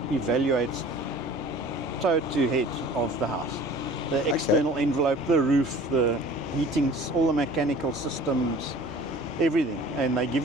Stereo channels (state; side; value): normal; both; correlation 0.46